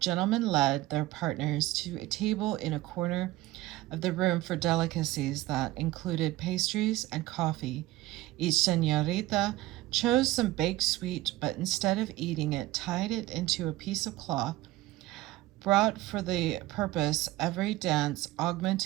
led their partners to a table in a corner of the room for delicacies that included pastries and coffee. Each señorita chose some baked sweet, but instead of eating it, tied it into a piece of cloth. Brought for the purpose, every dance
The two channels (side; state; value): left; quieter; 16.8 dB